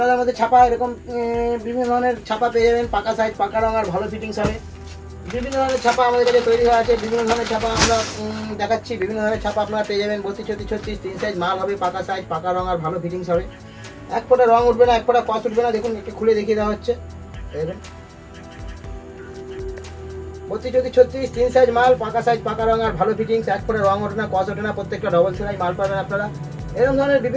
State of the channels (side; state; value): both; identical; correlation 1.00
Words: হাতার মধ্যে ছাপা এরকম বিভিন্ন ধরনের ছাপা পেয়ে যাবেন, পাকা সাইজ পাকা রং আর ভালো ফিটিংস হবে। বিভিন্ন ধরনের ছাপা আমাদের কাছে তৈরি হয়ে আছে, বিভিন্ন ধরনের ছাপা আমরা দেখাচ্ছি। বিভিন্ন ধরনের ছাপা আপনারা পেয়ে যাবেন 32, 34, 36 3 সাইজ মাল হবে, পাকা সাইজ পাকা রং আর ভালো ফিটিংস হবে। এক ফোঁটা রং উঠবে না, এক ফোঁটা কস উঠবে না। দেখুন একটু খুলে দেখিয়ে দেওয়া হচ্ছে। দেখুন 32, 34, 36 3 সাইজ মাল, পাকা সাইজ পাকা রং আর ভালো ফিটিংস, এক ফোঁটা রং ওঠে না কস ওঠে না, প্রত্যেকটা ডবল সেলাই মাল পাবেন আপনারা। এরকম ধরনের